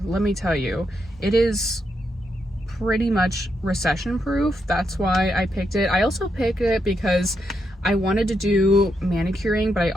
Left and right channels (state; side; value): normal; both; correlation 0.81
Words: Let me tell you, it is pretty much recession proof. That's why I picked it. I also picked it because I wanted to do manicuring, but I